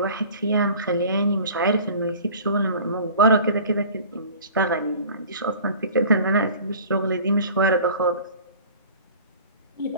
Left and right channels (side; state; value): both; inverted; correlation -0.44